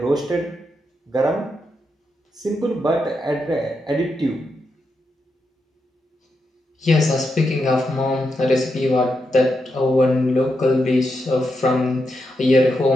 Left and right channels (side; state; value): both; normal; correlation 0.84